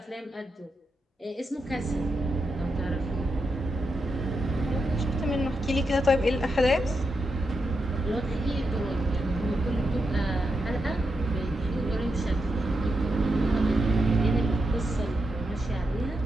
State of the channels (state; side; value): normal; both; correlation 0.86